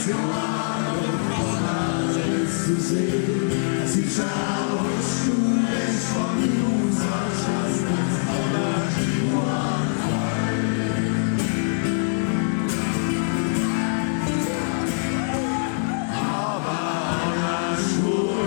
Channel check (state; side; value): silent; right; digital silence